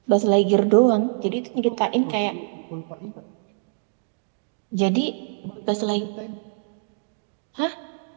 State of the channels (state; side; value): silent; left; digital silence